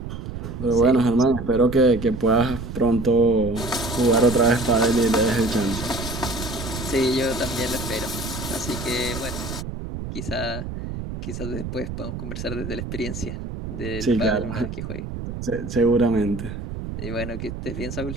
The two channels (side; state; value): right; noise; rumble, 7 dB below the sound